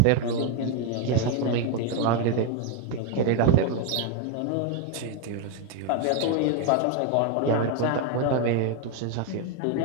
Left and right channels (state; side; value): different; both; correlation 0.01